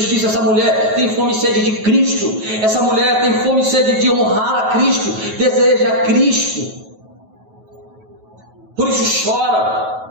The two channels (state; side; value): late; left; 9.3 ms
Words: Essa mulher tem fome e sede de Cristo, essa mulher tem fome e sede de honrar a Cristo, deseja a Cristo, por isso